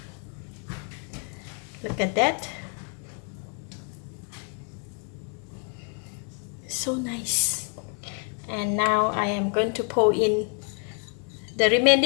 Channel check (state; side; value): quieter; right; 39.7 dB